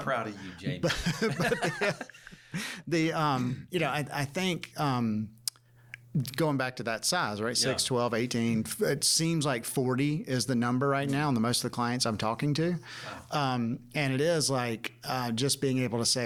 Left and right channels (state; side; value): identical; both; correlation 1.00